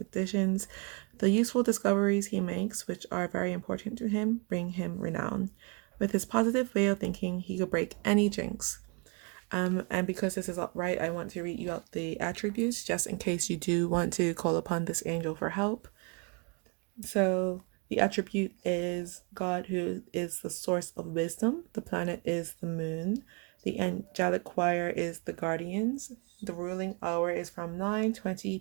The useful discoveries he makes, which are very important to him, bring him renown. With his positive way of thinking, he could break any jinx. And because this is upright, I want to read you out the attributes just in case you do want to call upon this angel for help. So the attribute is God, who is the source of wisdom. The planet is the moon. The angelic choir is the guardians. The ruling hour is from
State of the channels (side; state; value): left; quieter; 32.1 dB